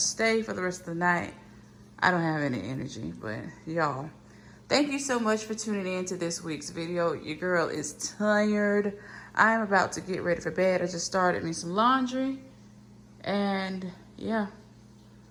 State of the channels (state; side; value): identical; both; correlation 1.00